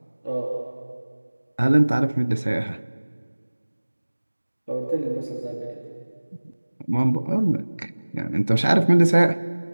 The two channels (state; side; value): inverted; both; correlation -1.00